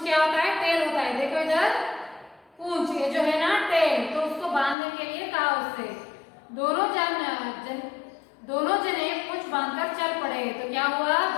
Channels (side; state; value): right; drops out; at 4.8 s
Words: क्या होता है, टेल होता है। देखो इधर पूंछ, ये जो है ना टेल, तो उसको बांधने के लिए कहा उससे। दोनों जने पूंछ बांधकर चल पड़े। तो क्या हुआ,